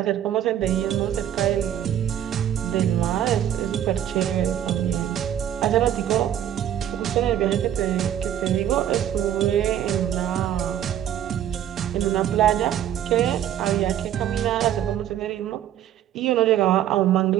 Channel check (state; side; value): quieter; left; 10.8 dB